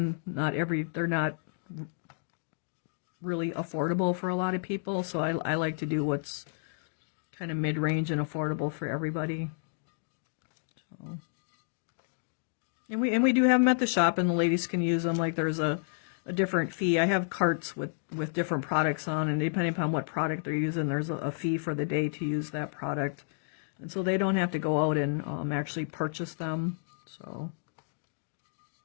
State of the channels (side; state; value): right; silent; digital silence